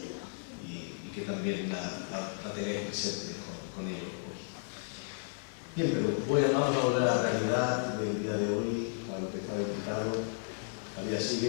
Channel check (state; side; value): silent; right; 55 dB below the other